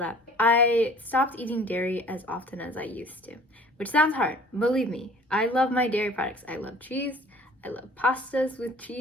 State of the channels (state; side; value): normal; both; correlation 0.50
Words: I stopped eating dairy as often as I used to, which sounds hard. Believe me, I love my dairy products. I love cheese. I love pastas with